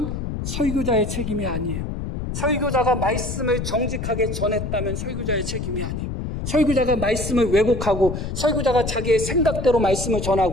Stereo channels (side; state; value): left; noise; rumble, 5 dB below the sound